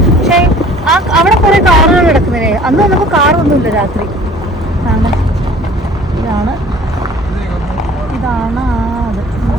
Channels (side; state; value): both; normal; correlation 0.50